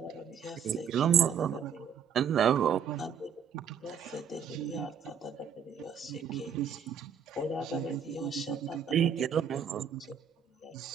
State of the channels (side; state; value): left; quieter; 7.4 dB